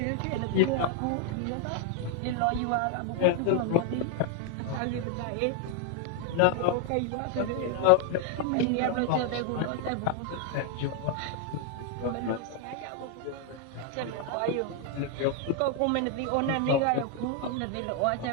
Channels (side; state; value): both; different; correlation 0.00